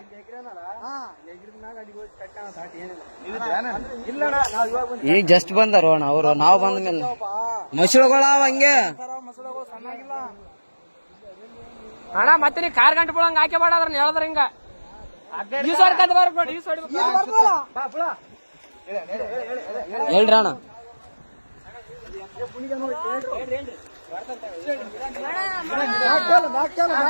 ಈಗ ಜಸ್ಟ್ ಬಂದಾರ ಅಣ್ಣ ಅವರು. ನಾವು ಬಂದ ಮೇಲೆ ಮಸಳುಗಳ ಹಂಗೆ ಅಣ್ಣ. ಮತ್ತೆ ನೀ ಕಾರ್ ಗಂಟೆ ಬಿಡಂಗ ಹಾಕಿ ಬೇಡ ಅದ್ರ ಹೇಳಿದ್ರ ಹಿಂಗ ಹೇಳ್ರಿ ಅಣ್ಣ.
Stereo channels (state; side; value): inverted; both; correlation -1.00